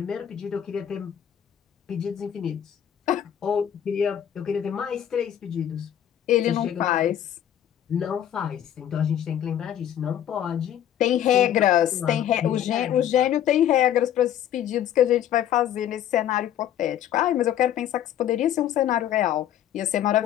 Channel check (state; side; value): quieter; right; 10.6 dB